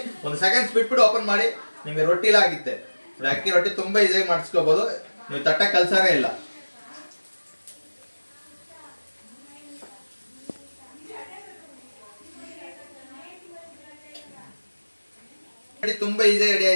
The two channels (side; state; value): both; inverted; correlation -1.00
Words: 1 ಸೆಕೆಂಡ್ಸ್ ಬಿಟ್ಬಿಟ್ಟು ಓಪನ್ ಮಾಡಿ ನಿಮ್ಗೆ ರೊಟ್ಟಿ ಎಲ್ಲ ಆಗುತ್ತೆ. ಅಕ್ಕಿ ರೊಟ್ಟಿ ತುಂಬಾ ಈಸಿಯಾಗಿ ಮಾಡಿಸ್ಕೋಬಹುದು. ನೀವು ತಟ್ಟ ಕಲ್ಸಾನೇ ಇಲ್ಲ. ತುಂಬಾ ಈಸಿಯಾಗಿ ರೆಡಿ